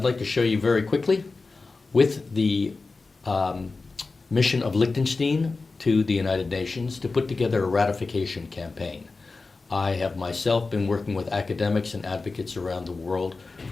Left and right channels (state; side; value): quieter; right; 3.9 dB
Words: like to show you very quickly, with the mission of Liechtenstein to the United Nations to put together a ratification campaign. I have myself been working with academics and advocates around the world